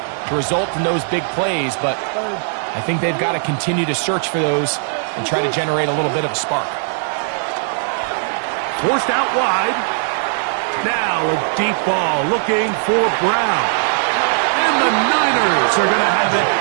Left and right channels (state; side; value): silent; left; 59 dB below the other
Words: to result in those big plays, but I think they've got to continue to search for those and try to generate a little bit of a spark. Forced out wide. Now a deep ball looking for Brown. And the Niners are going to have it